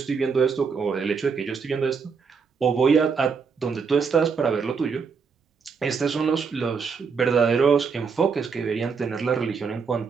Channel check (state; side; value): quieter; left; 5.6 dB